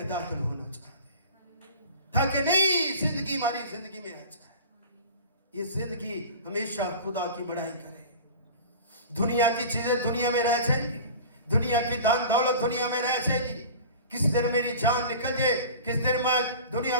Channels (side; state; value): both; inverted; correlation -0.38